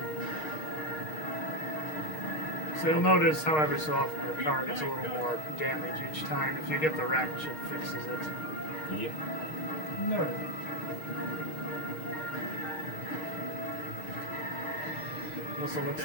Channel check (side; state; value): right; late; 6.5 ms